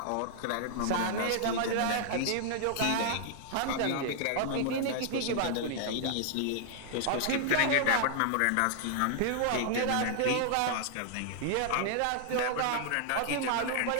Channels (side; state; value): both; different; correlation 0.00